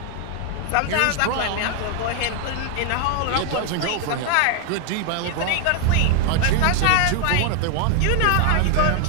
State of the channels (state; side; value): different; both; correlation 0.00